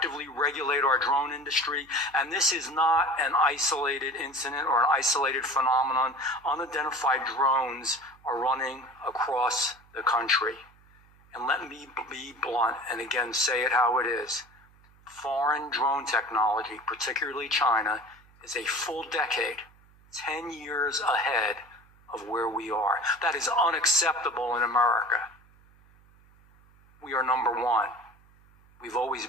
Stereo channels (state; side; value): noise; right; hum, 28 dB below the sound